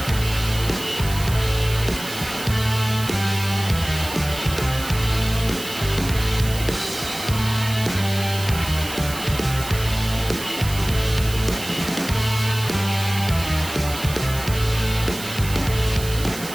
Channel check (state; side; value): noise; right; hiss, 11 dB below the sound